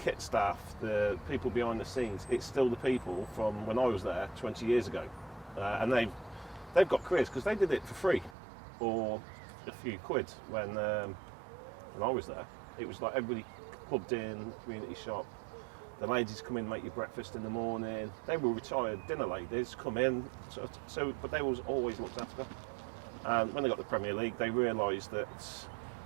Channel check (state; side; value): drops out; left; at 8.3 s